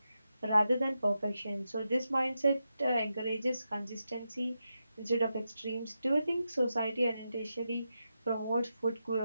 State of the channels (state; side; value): inverted; both; correlation -0.88